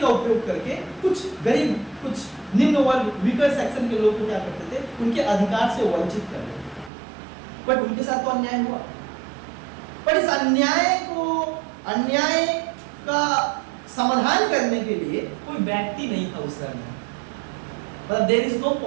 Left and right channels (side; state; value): left; drops out; at 6.9 s